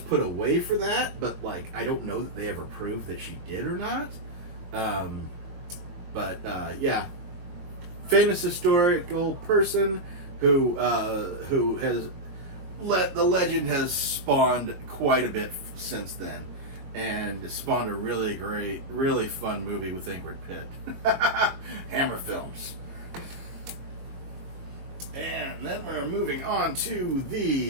away for that, but I don't know that they ever proved that she did or not. Yeah, famous historical person who has the legend has spawned quite a bit since then, and spawned a really great, really fun movie with Ingrid Pitt. Hammer Films. And then we're moving on to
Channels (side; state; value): left; late; 22 ms